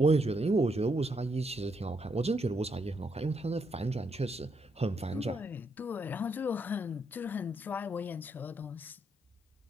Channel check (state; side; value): normal; both; correlation 0.77